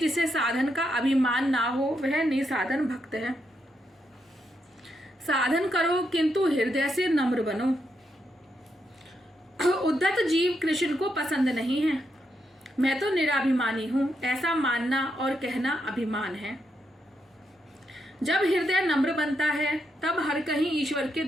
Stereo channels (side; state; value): both; normal; correlation 0.81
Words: साधन का अभिमान ना हो वह निसाधन भक्त है। साधन करो किंतु हृदय से नम्र बनो। उद्धत जीव कृष्ण को पसंद नहीं है। मैं तो निराभिमानी हूं, ऐसा मानना और कहना अभिमान है। जब हृदय नम्र बनता है तब हर कहीं ईश्वर के